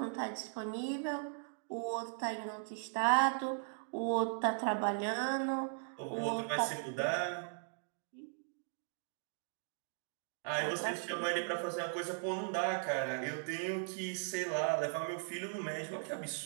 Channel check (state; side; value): silent; left; digital silence